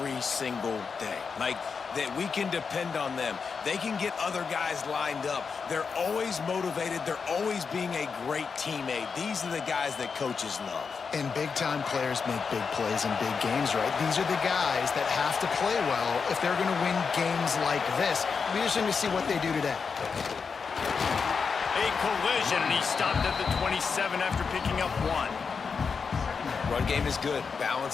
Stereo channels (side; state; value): right; quieter; 5.5 dB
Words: single day. Like, that we can depend on them. They can get other guys lined up. They're always motivated. They're always being a great teammate. These are the guys that coaches love. And big-time players make big plays in big games, right? These are the guys that have to play well if they're going to win games like this. We just need to see what they do today. A collision, and he stopped at the 27 after picking up 1. Run game is good.